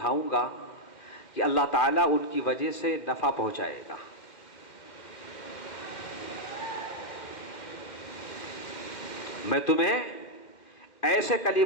گا کہ اللہ تعالیٰ ان کی وجہ سے نفع پہنچائے گا۔ میں تمہیں ایسے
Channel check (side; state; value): right; late; 2.1 ms